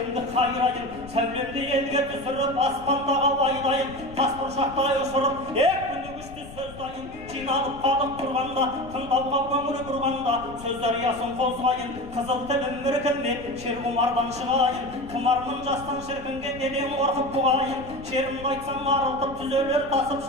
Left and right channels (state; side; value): noise; left; rumble, 16 dB below the sound